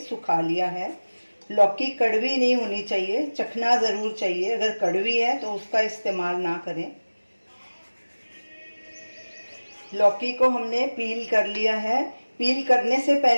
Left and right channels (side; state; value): both; inverted; correlation -1.00